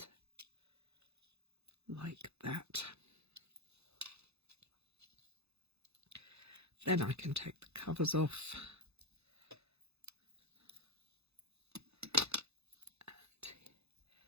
like that. Then I can take the covers off and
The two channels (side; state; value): left; late; 0.79 ms